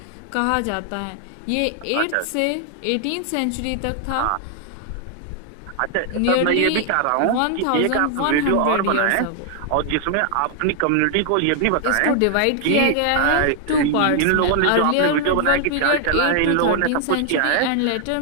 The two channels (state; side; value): different; both; correlation 0.00